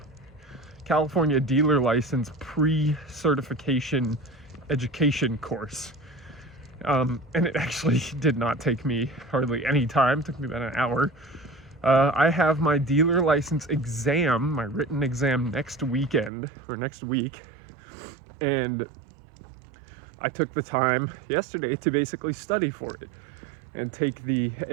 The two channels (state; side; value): drops out; left; at 16.3 s